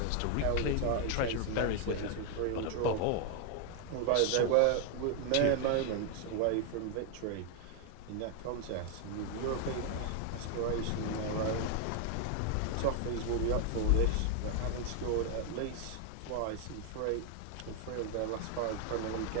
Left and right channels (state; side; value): different; both; correlation 0.00